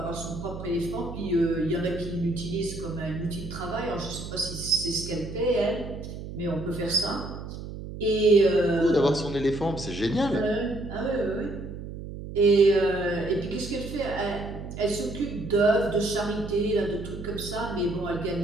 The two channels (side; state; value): right; noise; hum, 10 dB below the sound